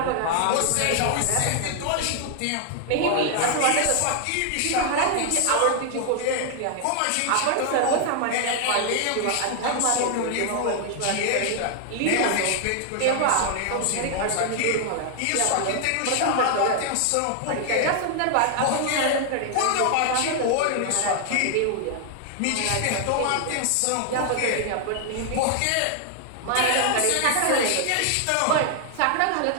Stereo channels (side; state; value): both; different; correlation 0.00